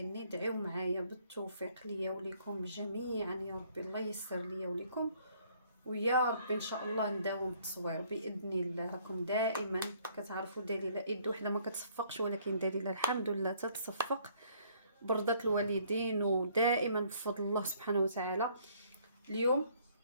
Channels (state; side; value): inverted; both; correlation -0.62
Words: دعيو معايا بالتوفيق ليا وليكم جميعا يا ربي، الله ييسر ليا وليكم، ويا ربي ان شاء الله نداوم التصوير باذن الله. راكم دائما كتعرفوا دليله يد وحده ما كتصفقش، ولكن دليله الحمد لله تتصفق برضة الوالدين، ودائما بفضل الله سبحانه وتعالى. اليوم